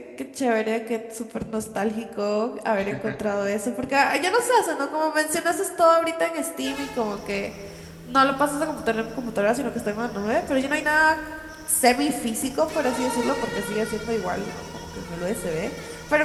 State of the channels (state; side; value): identical; both; correlation 1.00